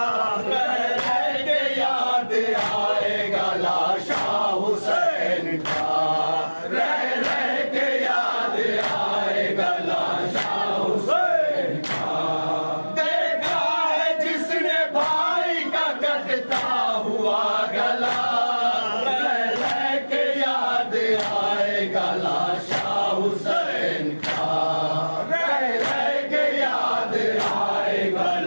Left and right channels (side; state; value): both; inverted; correlation -1.00